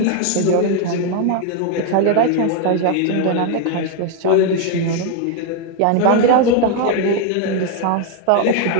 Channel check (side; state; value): both; different; correlation 0.00